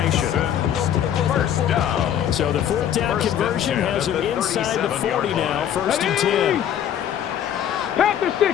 First down. So the fourth down conversion has him inside the 40 now. First and 10. Panther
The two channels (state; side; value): quieter; right; 10.0 dB